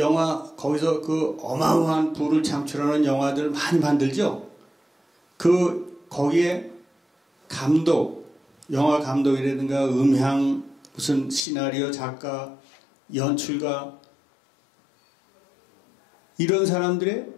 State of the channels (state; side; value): drops out; right; at 11.4 s